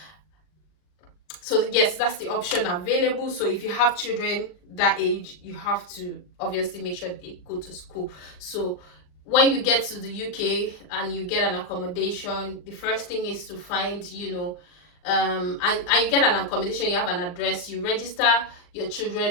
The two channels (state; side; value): late; right; 39 ms